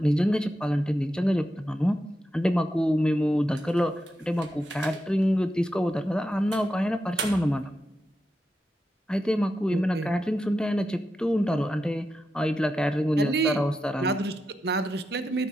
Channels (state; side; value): normal; both; correlation 0.88